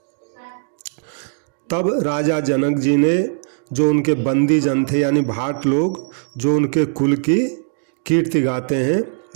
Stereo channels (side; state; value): left; silent; 66 dB below the other